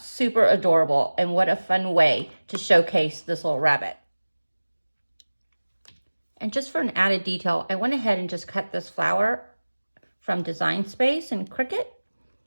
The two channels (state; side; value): inverted; both; correlation -1.00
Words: super adorable, and what a fun way to showcase this little rabbit. And just for an added detail, I went ahead and just cut this flower from Design Space and Cricut.